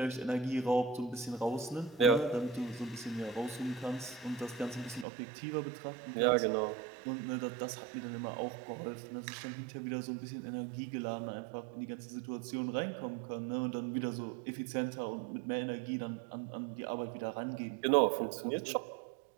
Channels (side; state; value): left; drops out; at 5.1 s